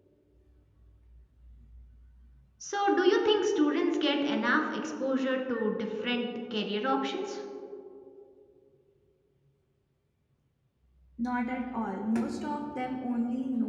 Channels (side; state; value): both; identical; correlation 1.00